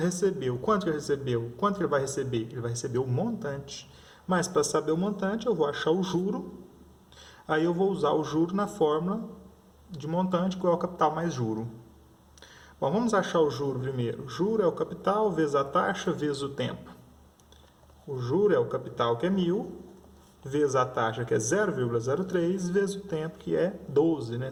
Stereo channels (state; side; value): identical; both; correlation 1.00